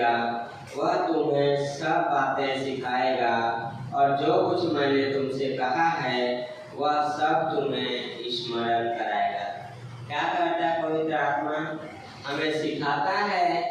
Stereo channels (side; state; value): both; identical; correlation 1.00